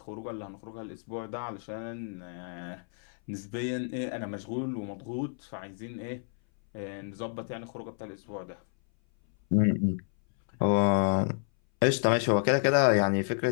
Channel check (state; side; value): silent; right; 58 dB below the other